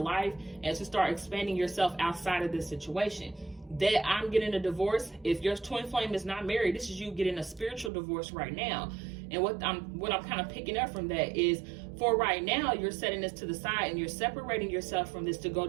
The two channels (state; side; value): drops out; left; at 7.9 s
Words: and to start expanding yourself outside of this situation. That I'm getting a divorce. If your twin flame is not married, this is you getting a spiritual divorce right now. And what I'm kind of picking up from that is, for right now, you're setting this to the side and you're separating yourself from this to go